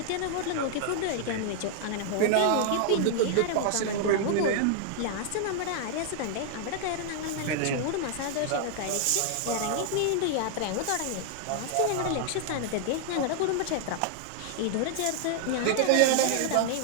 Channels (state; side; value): different; both; correlation 0.00